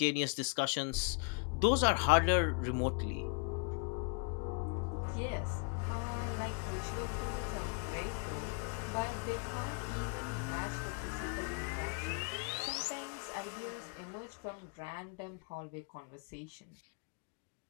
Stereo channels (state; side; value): quieter; right; 37.8 dB